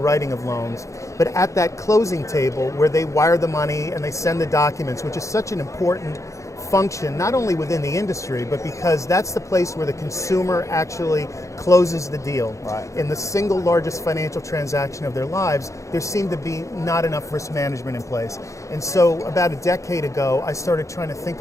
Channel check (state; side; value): late; right; 0.15 ms